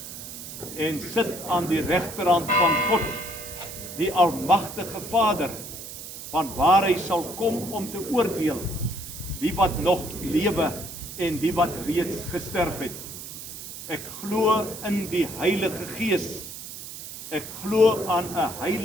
en sit aan die regterhand van God, die Almagtige Vader, van waar hy sal kom om te oordeel, die wat nog lewe, en die wat reeds gesterf het. Ek glo in die Heilige Gees. Ek glo aan 'n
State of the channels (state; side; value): noise; right; hiss, 11 dB below the sound